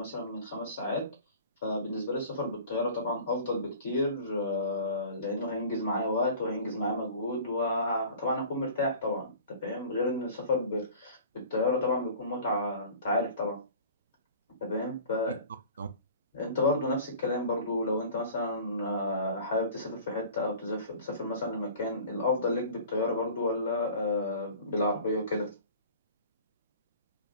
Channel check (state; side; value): inverted; both; correlation -0.43